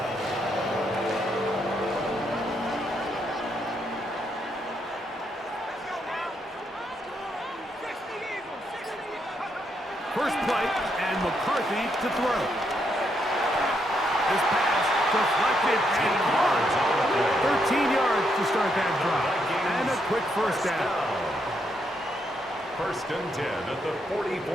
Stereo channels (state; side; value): normal; both; correlation 0.78